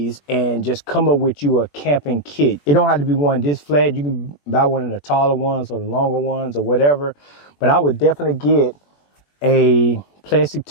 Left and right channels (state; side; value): late; right; 21 ms